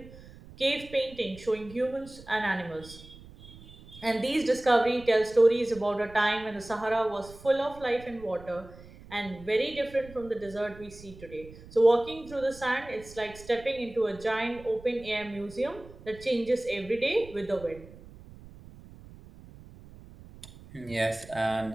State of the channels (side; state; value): right; noise; rumble, 19 dB below the sound